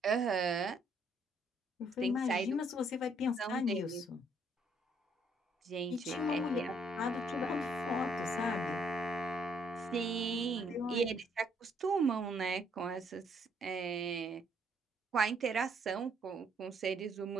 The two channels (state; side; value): normal; both; correlation 0.68